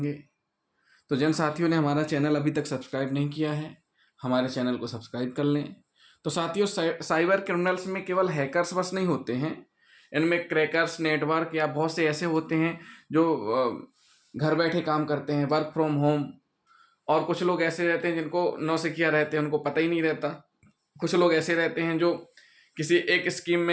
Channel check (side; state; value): both; identical; correlation 1.00